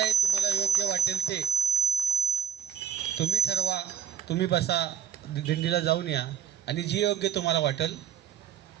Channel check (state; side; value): quieter; left; 8.8 dB